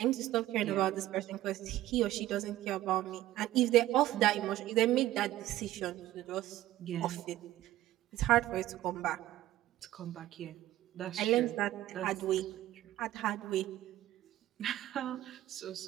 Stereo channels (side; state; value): left; quieter; 14.6 dB